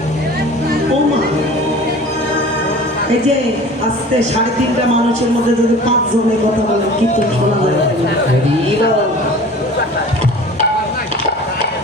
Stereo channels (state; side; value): normal; both; correlation 0.42